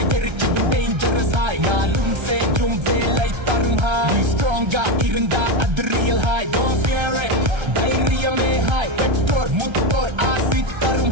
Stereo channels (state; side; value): late; left; 1.3 ms